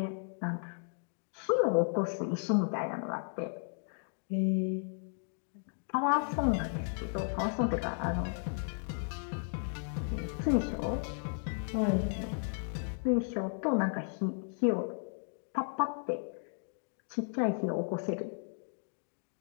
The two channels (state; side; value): silent; right; 55 dB below the other